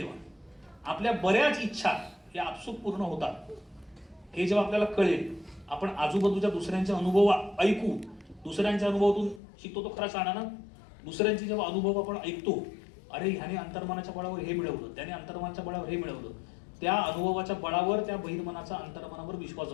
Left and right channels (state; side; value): drops out; right; at 9.4 s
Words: आपल्या बऱ्याच इच्छा या आपसूक पूर्ण होतात हे जेव्हा आपल्याला कळेल. आपण आजूबाजूच्या दुसऱ्यांचे अनुभव ऐकू दुसऱ्यांच्या अनुभवातून शिकतो तो खरा शहाणा ना. दुसऱ्यांचे जेव्हा अनुभव आपण ऐकतो अरे ह्याने अंतर्मनाच्या बळावर हे मिळवलं त्याने अंतर्मनाच्या बळावर हे मिळवलं त्या अनुभवाच्या बळावर त्या बहिर्मनाचा अंतर्मनावर विश्वास